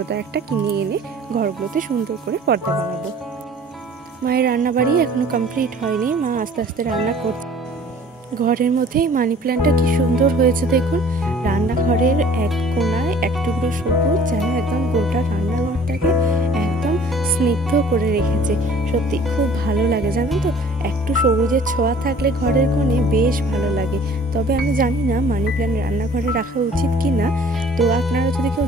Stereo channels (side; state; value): both; normal; correlation 0.51